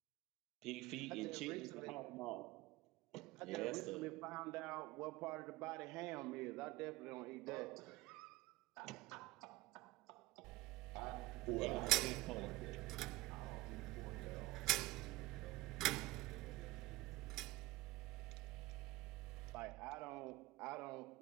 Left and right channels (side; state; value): left; quieter; 19.3 dB